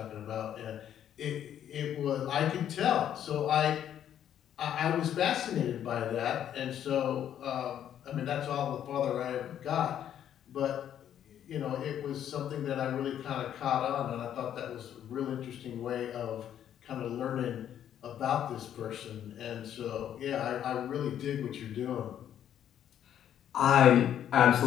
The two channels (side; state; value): right; quieter; 10.2 dB